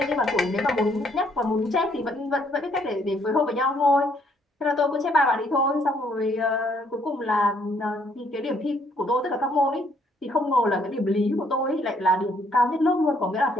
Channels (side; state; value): both; normal; correlation 0.67